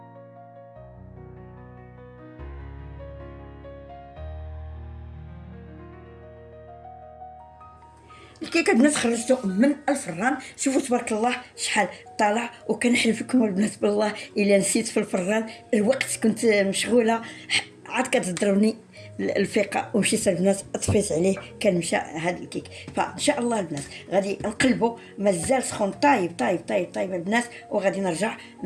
الكيكه البنات خرجته من الفران، شوفوا تبارك الله شحال طالع. وكنحلف لكم البنات بالله الا نسيت في الفران الوقت، كنت مشغوله عاد كتضربني الفيقه ومشيت البنات طفيت عليه، كان مشى هذا الكيك. فان شاء الله البنات غادي نقلبوا، مازال سخون طايب طايب طايب طايب البنات، وغادي نرجع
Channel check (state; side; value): identical; both; correlation 1.00